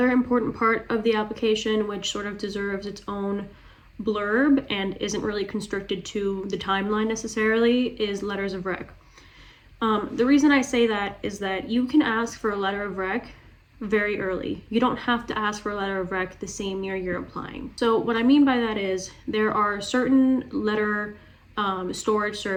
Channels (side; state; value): both; identical; correlation 1.00